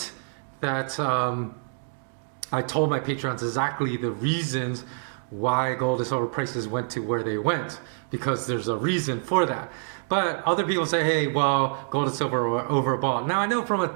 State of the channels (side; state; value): left; silent; digital silence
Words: that I told my patrons exactly the reasons why gold and silver prices went to where they went, because there's a reason for that. But other people say, hey, well, gold and silver are overbought. Now I know from a